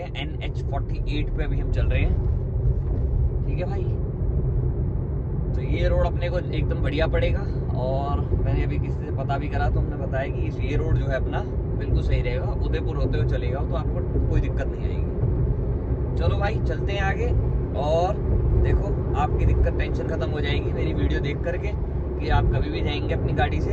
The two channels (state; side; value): identical; both; correlation 1.00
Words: NH48 पे अभी हम चल रहे हैं। ठीक है भाई, तो ये रोड अपने को एकदम बढ़िया पड़ेगा। और मैंने अभी किसी से पता भी करा तो हमने बताया कि ये रोड जो है अपना बिल्कुल सही रहेगा, उदयपुर होते हुए चलेगा तो आपको कोई दिक्कत नहीं आएगी। चलो भाई चलते हैं आगे। और देखो आपकी दिक्कत टेंशन खत्म हो जाएगी मेरी वीडियो देख करके कि आप कभी भी जाएंगे अपनी गाड़ी से